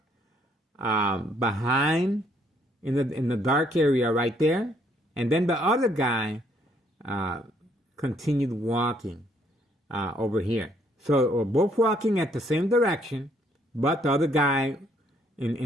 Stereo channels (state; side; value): normal; both; correlation 0.67